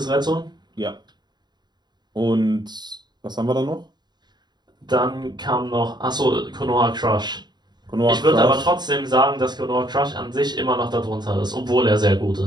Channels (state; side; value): late; left; 0.21 ms